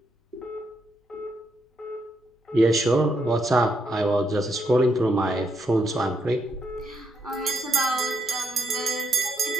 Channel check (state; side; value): normal; both; correlation 0.76